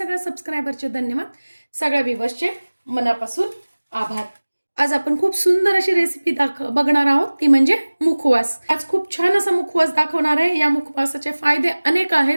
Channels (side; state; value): both; inverted; correlation -1.00